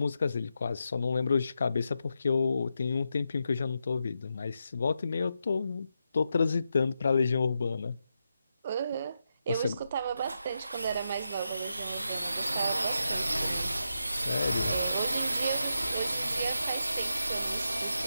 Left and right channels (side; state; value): both; inverted; correlation -0.86